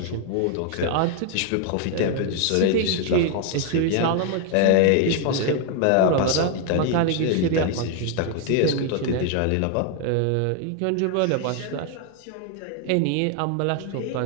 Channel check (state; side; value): different; both; correlation 0.00